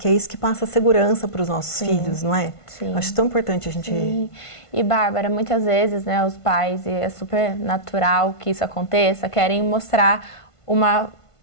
é isso que passa segurança para os nossos filhos, não é? Sim. Acho tão importante a gente... Sim. E, Bárbara, muitas vezes, né, os pais, e é super natural que isso aconteça, querem mostrar uma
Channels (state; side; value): late; right; 1.5 ms